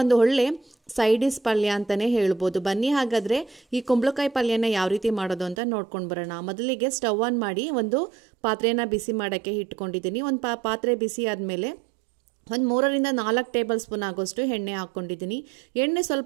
ಒಂದು ಒಳ್ಳೆ ಸೈಡ್ ಡಿಶ್ ಪಲ್ಯ ಅಂತಾನೆ ಹೇಳ್ಬೋದು. ಬನ್ನಿ ಹಾಗಾದ್ರೆ ಈ ಕುಂಬಳಕಾಯಿ ಪಲ್ಯನ ಯಾವ ರೀತಿ ಮಾಡೋದು ಅಂತ ನೋಡ್ಕೊಂಡು ಬರೋಣ. ಮೊದಲಿಗೆ ಸ್ಟವ್ ಆನ್ ಮಾಡಿ ಒಂದು ಪಾತ್ರೆನ ಬಿಸಿ ಮಾಡೋಕ್ಕೆ ಇಟ್ಕೊಂಡಿದ್ದೀನಿ. ಒಂದು ಪಾತ್ರೆ ಬಿಸಿ ಆದಮೇಲೆ ಒಂದು 3ರಿಂದ 4 ಟೇಬಲ್ ಸ್ಪೂನ್ ಆಗೋಷ್ಟು ಎಣ್ಣೆ ಹಾಕ್ಕೊಂಡಿದ್ದೀನಿ. ಎಣ್ಣೆ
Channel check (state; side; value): drops out; left; at 5.6 s